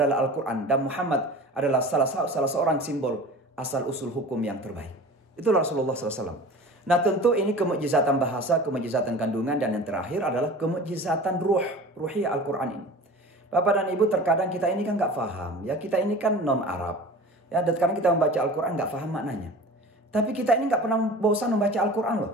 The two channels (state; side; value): normal; both; correlation 0.38